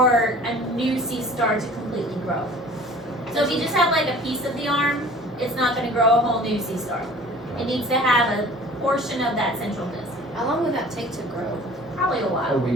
a new sea star to completely grow. So if you just have like a piece of the arm, it's not going to grow a whole new sea star. It needs to have a portion of that central disc. How long would that take to grow? Probably a A while.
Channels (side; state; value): both; normal; correlation 0.46